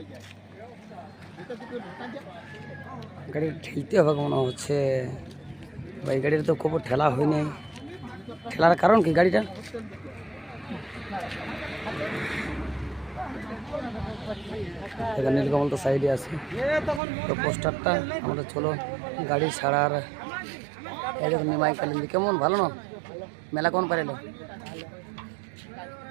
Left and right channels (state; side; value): drops out; left; at 17.0 s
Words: গাড়ি ঠেলতে হবে মনে হচ্ছে ভাই। গাড়িটা তো খুব ঠেলা হয়নি, ঠেলার কারণ কি গাড়িটা? এখানে নীলকমল তো সাইডে আছে, তো পোস্টারটা আমাদের চলো গাড়ি ছাড়ার। এই দেখুন নিমাই কালিন্দি কেমন ভালো না মেলা কোন পারেলো?